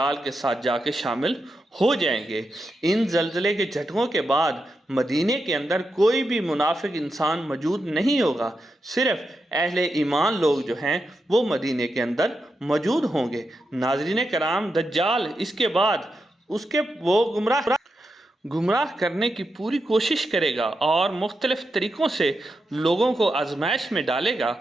کے ساتھ جا کے شامل ہو جائیں گے۔ ان زلزلے کے جھٹکوں کے بعد مدینے کے اندر کوئی بھی منافق انسان موجود نہیں ہوگا، صرف اہل ایمان لوگ جو ہیں وہ مدینے کے اندر موجود ہوں گے۔ ناظرین کرام، دجال اس کے بعد وہ گمراہ کرنے کی پوری کوشش کرے گا، اور مختلف طریقوں سے لوگوں کو آزمائش میں ڈالے گا۔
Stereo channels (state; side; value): normal; both; correlation 0.87